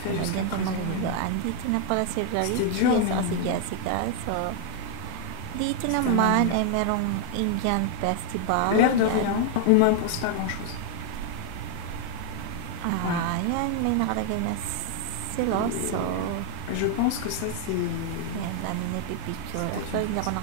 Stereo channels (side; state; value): both; different; correlation 0.00